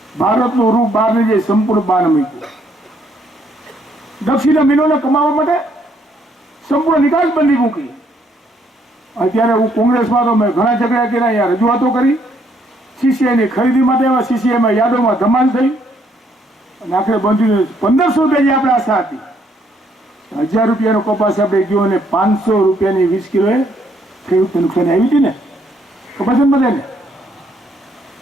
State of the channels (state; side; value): normal; both; correlation 0.70